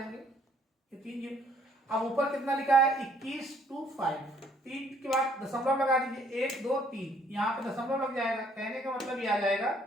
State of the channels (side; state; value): both; normal; correlation 0.63